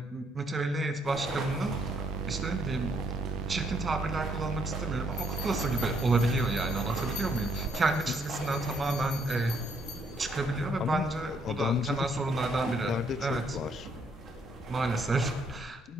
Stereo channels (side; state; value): both; normal; correlation 0.70